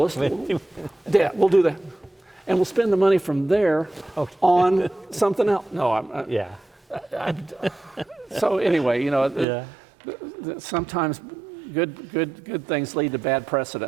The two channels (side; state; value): left; drops out; at 9.5 s